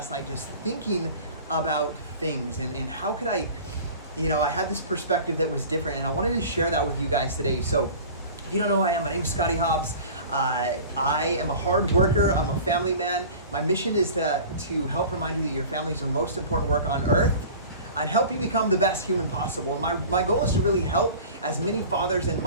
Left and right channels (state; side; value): inverted; both; correlation -0.40